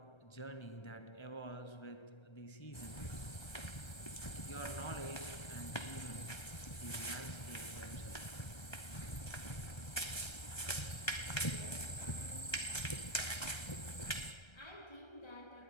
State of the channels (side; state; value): right; late; 1.3 ms